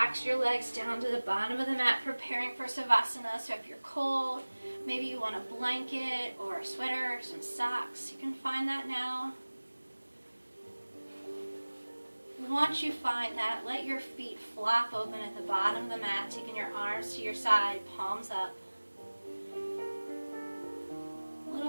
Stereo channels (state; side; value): inverted; both; correlation -1.00